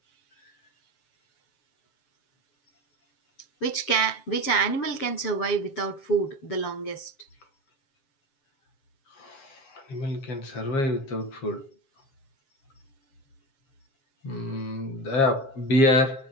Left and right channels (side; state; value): right; late; 7.5 ms